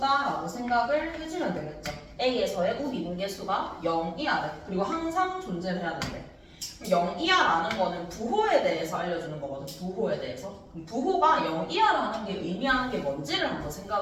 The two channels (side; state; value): both; identical; correlation 1.00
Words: 생각을 해주면 되겠죠. a에서의 우미분계수가 0이야 돼. 그리고 항상 존재를 해야 된대. 0이야라는 거는 부호에 대해서 알려주는 거거든. 부호에 대해서. 부호가 0이야라는 게 의미하는 게 뭔지를 한번